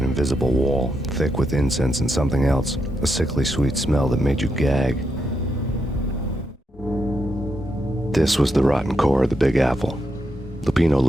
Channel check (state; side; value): normal; both; correlation 0.82